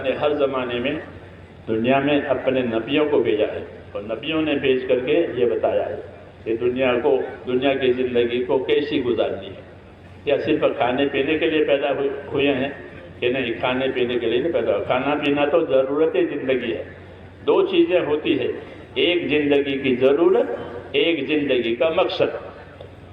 نے ہر زمانے میں دنیا میں اپنے نبیوں کو بھیجا ہے اور نبیوں نے بھیج کر کے یہ بتایا ہے کہ دنیا کی زندگی کو کیسی گزارنی ہے. کیا صرف کھانے پینے کے لیے پیدا ہوئے ہیں کہ نہیں؟ کھانے پینے کے لیے نہیں پیدا. کھانا پینا تو ضرورت زندگی ہے. دو چیزیں ہوتی ہے, ایک زندگی کی ضرورت, ایک زندگی کا مقصد.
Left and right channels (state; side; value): identical; both; correlation 1.00